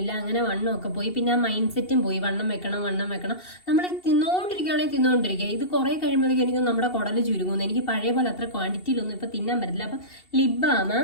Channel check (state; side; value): late; right; 2.7 ms